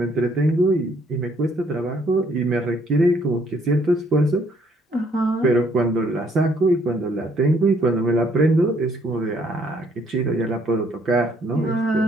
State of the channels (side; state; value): both; normal; correlation 0.66